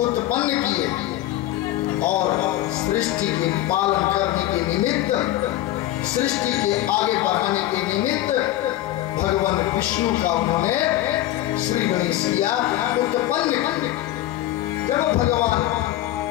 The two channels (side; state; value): right; quieter; 14.5 dB